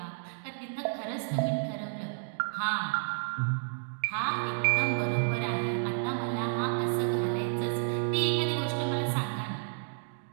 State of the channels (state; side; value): silent; left; digital silence